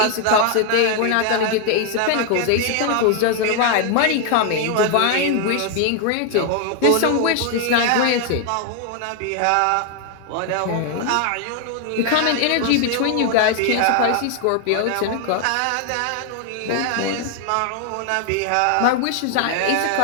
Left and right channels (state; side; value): different; both; correlation 0.00